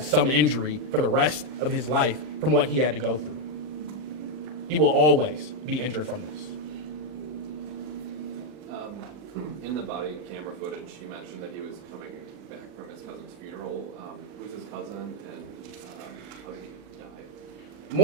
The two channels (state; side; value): late; left; 39 ms